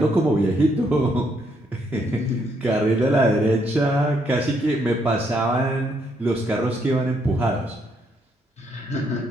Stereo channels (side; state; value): both; normal; correlation 0.74